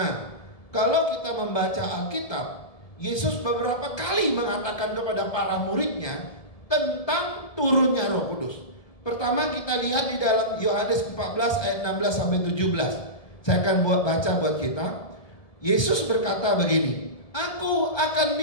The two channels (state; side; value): late; right; 1.2 ms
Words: kalau kita membaca Alkitab, Yesus beberapa kali mengatakan kepada para muridnya tentang turunnya Roh Kudus. Pertama kita lihat di dalam Yohanes 14 ayat 16 sampai 17. Saya akan baca buat kita. Yesus berkata begini, aku akan